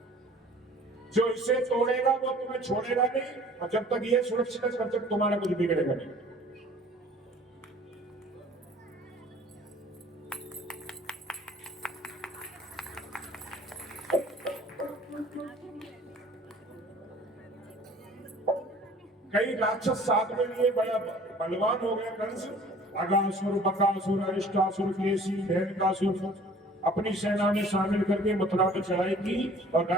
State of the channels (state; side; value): normal; both; correlation 0.50